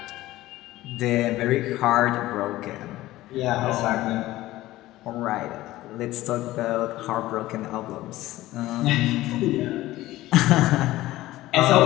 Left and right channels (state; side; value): quieter; right; 16.6 dB